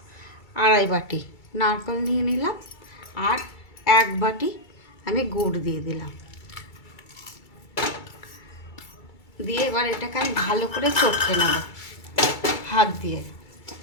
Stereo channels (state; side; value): late; right; 2.3 ms